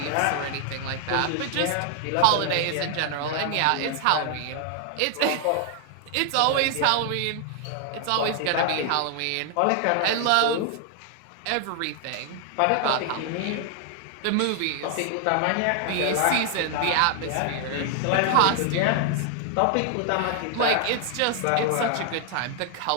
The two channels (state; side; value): different; both; correlation 0.00